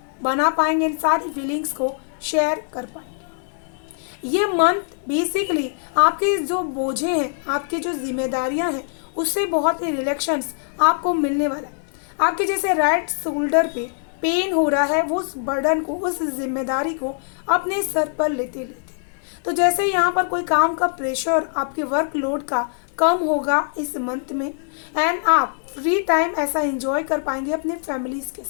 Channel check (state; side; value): silent; right; digital silence